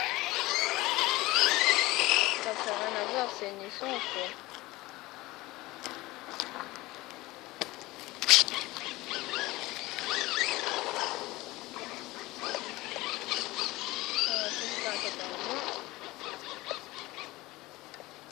ça fait rien à voir, c'est une essence quoi.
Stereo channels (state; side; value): quieter; right; 19.9 dB